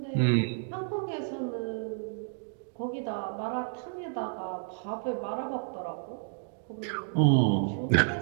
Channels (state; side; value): silent; left; digital silence